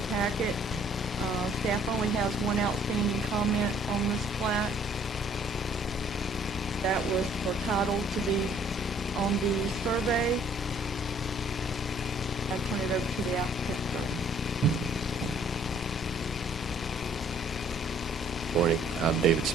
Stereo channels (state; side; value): normal; both; correlation 0.60